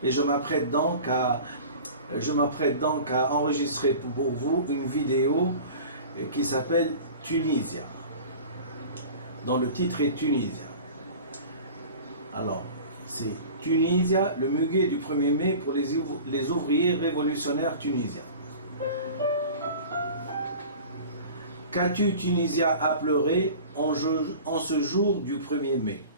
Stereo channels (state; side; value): inverted; both; correlation -0.39